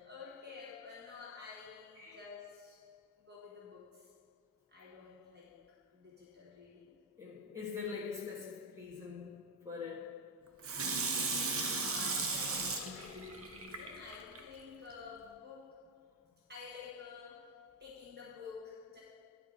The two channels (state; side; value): normal; both; correlation 0.05